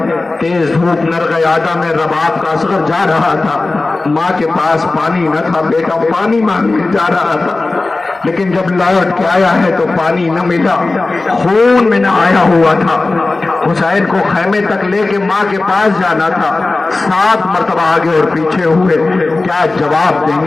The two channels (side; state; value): right; quieter; 3.3 dB